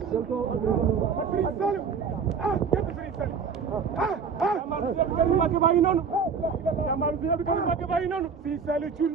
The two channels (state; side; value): quieter; left; 5.9 dB